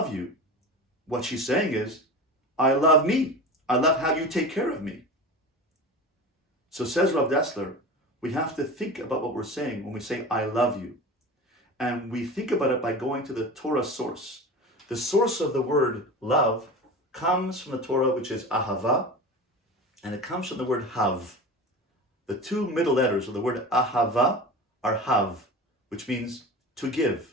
you. What she's saying is, I love me. I love how you take care of me. So says Rav Dessler, we have to think about what we're saying when we say, I love you. And we think about it by going to the Torah source. The source of the word love comes from the Torah, which is ahava, and it comes from the word hav. The two middle letters of the word ahava are hav, which means to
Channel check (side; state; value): both; normal; correlation 0.31